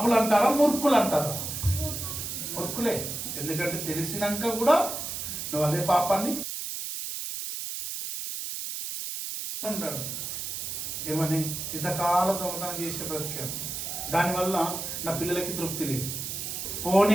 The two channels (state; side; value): noise; right; hiss, 5 dB below the sound